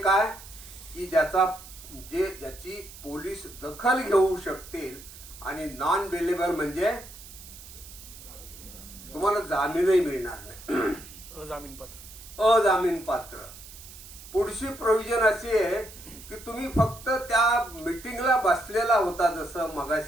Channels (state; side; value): noise; right; hiss, 17 dB below the sound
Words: की ज्याची पोलीस दखल घेऊ शकतील, आणि नॉन बेलेबल म्हणजे तुम्हाला जामीनही मिळणार नाही, अजामीन पात्र. पुढची प्रोव्हिजन अशी आहे की तुम्ही फक्त त्या मीटिंगला बसलेला होता, जसं